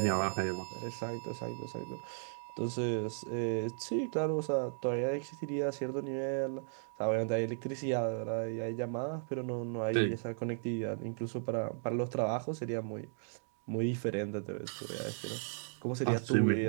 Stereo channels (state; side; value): silent; left; digital silence